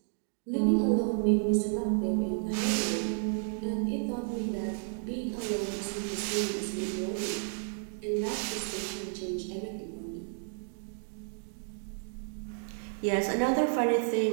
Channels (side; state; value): left; silent; 57 dB below the other